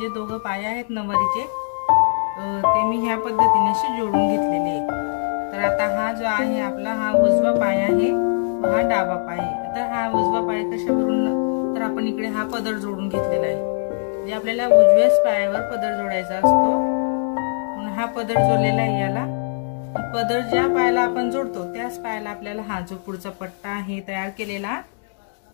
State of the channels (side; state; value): right; silent; digital silence